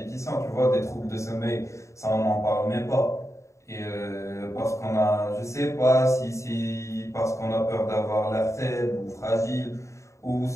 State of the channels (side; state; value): right; late; 0.14 ms